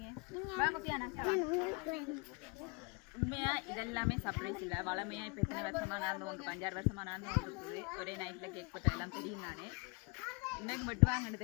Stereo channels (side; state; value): right; quieter; 32.4 dB